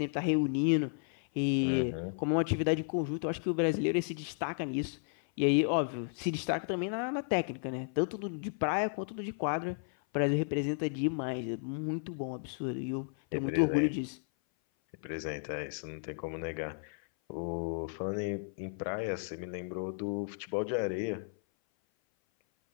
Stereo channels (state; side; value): silent; right; 55 dB below the other